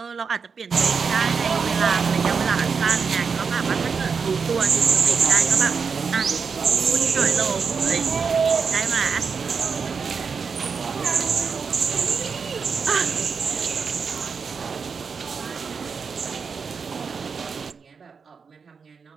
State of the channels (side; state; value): left; quieter; 5.6 dB